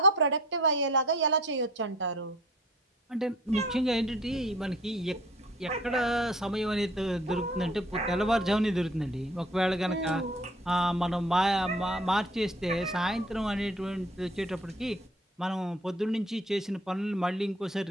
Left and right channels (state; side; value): normal; both; correlation 0.52